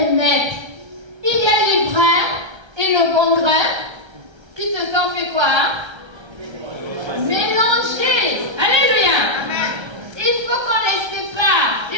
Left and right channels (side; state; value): left; late; 1.3 ms